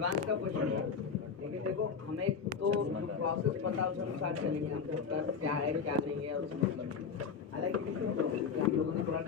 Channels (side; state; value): right; quieter; 6.0 dB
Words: का क्वेश्चन है। लेकिन देखो हमें तो प्रोसेस पता उस अनुसार चलेंगे। हमको कर क्या है क्या नहीं है उसमें मतलब नहीं। हालांकि हम लोगों ने थोड़ा